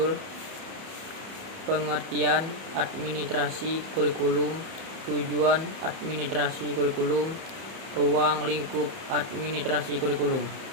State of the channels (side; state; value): left; late; 31 ms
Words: Pengertian Administrasi Kurikulum, Tujuan Administrasi Kurikulum, Ruang Lingkup Administrasi Kurikulum.